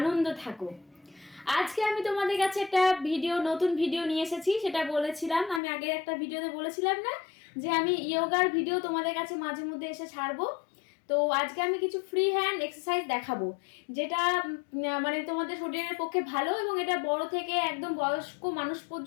থাকো। আজকে আমি তোমাদের কাছে একটা নতুন ভিডিও নিয়ে এসেছি। সেটা বলেছিলাম, আমি আগের একটা ভিডিওতে বলেছিলাম না যে আমি ইয়োগার ভিডিও তোমাদের কাছে মাঝে মধ্যে এসে ছাড়বো। তো আজকে আমি কিছু ফ্রি হ্যান্ড এক্সারসাইজ দেখাবো, যেটা মানে তোমাদের শরীরের পক্ষে ভালো, এবং এটা বড় থেকে একদম বয়স্ক মানুষ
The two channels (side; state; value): right; drops out; at 5.6 s